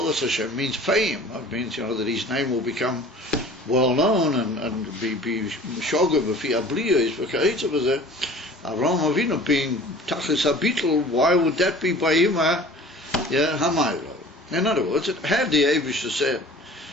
Hashem means fame. It means, that his name will become well known and be shoga b'fi abliya is v'ka'itza b'zeh. Avraham Avinu being tachlis habitl, why would that be by him? Hamaylo. In other words, had the Eibusha said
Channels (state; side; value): normal; both; correlation 0.45